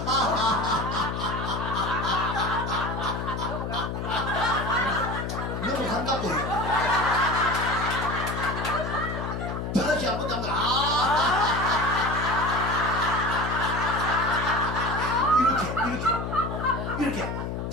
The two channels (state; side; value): noise; left; hum, 4 dB below the sound